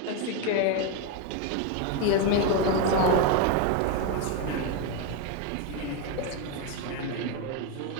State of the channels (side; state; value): both; different; correlation 0.02